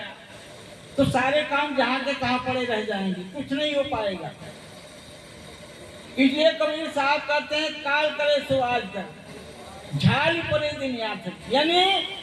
तो सारे काम जहां के तहां पड़े रह जाएंगे, कुछ नहीं हो पाएगा। इसलिए कबीर साहब कहते हैं काल करे सो आज कर, झाली परे दिन याद, यानी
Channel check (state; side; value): identical; both; correlation 1.00